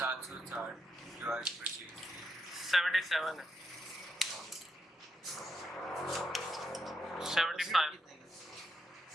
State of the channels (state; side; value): normal; both; correlation 0.82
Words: डिवाइड पर 77 है 75